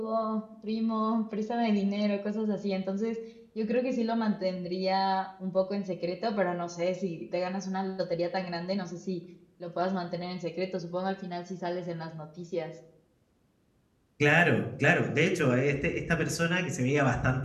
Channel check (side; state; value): both; identical; correlation 1.00